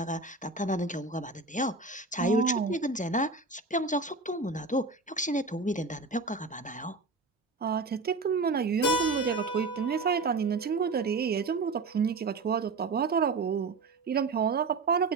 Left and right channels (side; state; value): left; quieter; 3.7 dB